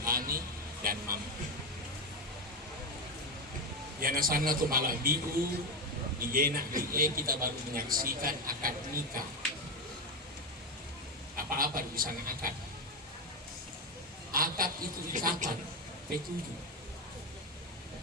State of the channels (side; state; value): both; normal; correlation 0.12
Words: dan mampu. Yana sana tu malah biu digenak kita baru menyaksikan akad nikah. Apa-apa di sana akad. Akad itu ikatan P7.